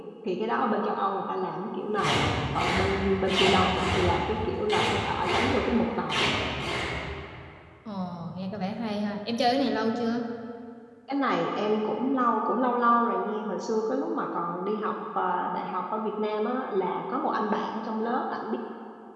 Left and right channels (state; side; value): identical; both; correlation 1.00